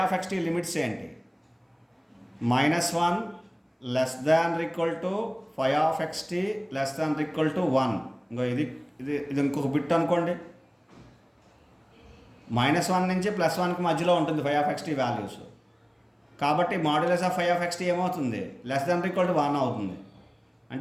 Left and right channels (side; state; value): both; identical; correlation 1.00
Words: ఆఫ్ ఎక్స్టీ లిమిట్స్ ఏంటి? -1 less than equal to phi of xt less than equal to 1. ఇంకో ఇది ఇది ఇది ఇంకొక బిట్ అనుకోండి. -1 నుంచి +1కి మధ్యలో ఉంటుంది ఫై ఆఫ్ ఎక్స్టీ వాల్యూస్. కాబట్టి modulus of phi of xt ఏమవుతుంది? లెస్ దాన్ ఈక్వల్ టు 1 అవుతుంది.